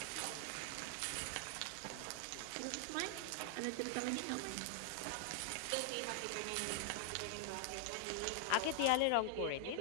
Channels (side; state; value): both; different; correlation -0.01